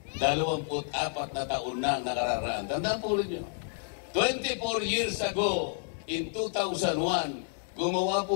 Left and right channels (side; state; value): right; silent; digital silence